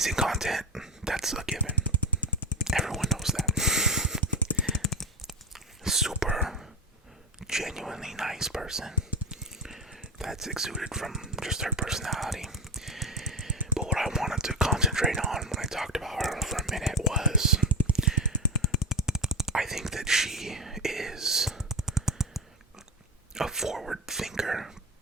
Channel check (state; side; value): normal; both; correlation 0.20